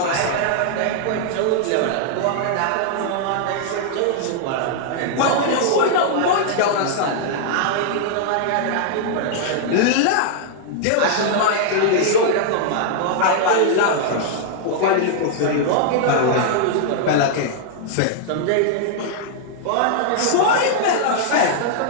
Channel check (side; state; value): both; different; correlation -0.01